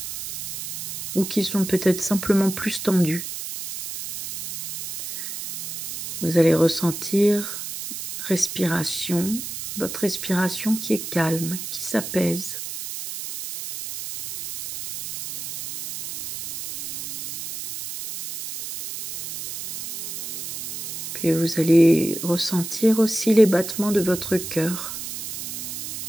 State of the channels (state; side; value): noise; right; hiss, 7 dB below the sound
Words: ou qui sont peut-être simplement plus tendues. Vous allez ressentir respiration, votre respiration qui est calme, qui s'apaise. Puis vous allez ressentir aussi les battements de votre cœur